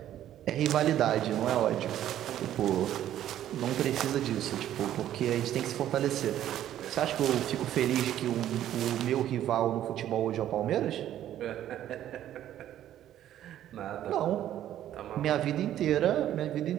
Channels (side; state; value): left; quieter; 11.8 dB